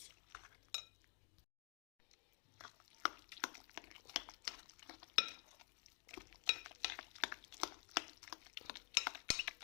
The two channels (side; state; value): right; quieter; 34.9 dB